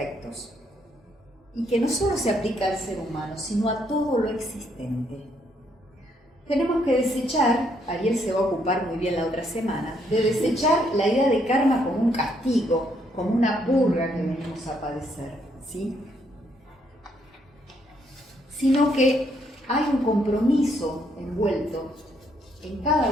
y que no solo se aplica al ser humano, sino a todo lo existente. Tenemos que desechar, Ariel se va a ocupar muy bien la otra semana, de desechar la idea de karma como un castigo, como una purga que venimos a padecer, ¿sí? Sino que hay un compromiso envuelto en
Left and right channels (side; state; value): both; normal; correlation 0.72